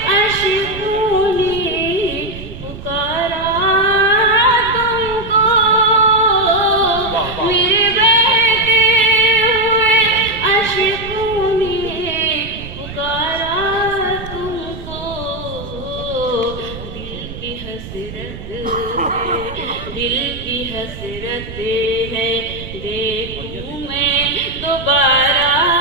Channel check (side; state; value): right; noise; rumble, 12 dB below the sound